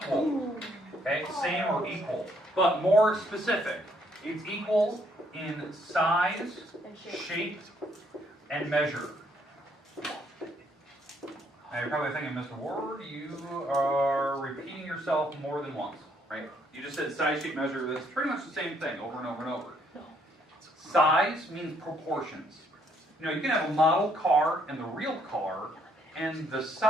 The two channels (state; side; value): normal; both; correlation 0.69